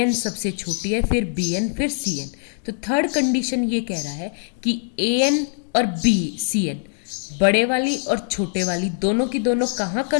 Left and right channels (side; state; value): right; silent; 55 dB below the other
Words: सबसे छोटी है, फिर बी एन, फिर सी एन। तो थर्ड कंडीशन ये कह रहा है कि ए एन और बी सी एन, बड़े वाली और छोटे वाली दोनों की दोनों कहाँ